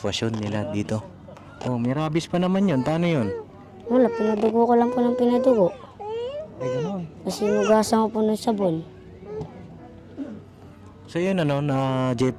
nila dito. May rabies pa naman yun. Paano yun? Wala, pinadugo ko lang po ng pinadugo. Ay, gano'n. Kasi nugasan ko po ng sabon. So yun na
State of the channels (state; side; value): identical; both; correlation 1.00